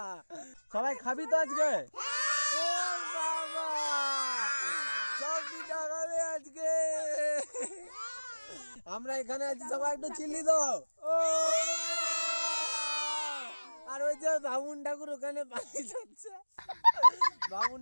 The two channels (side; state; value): both; inverted; correlation -1.00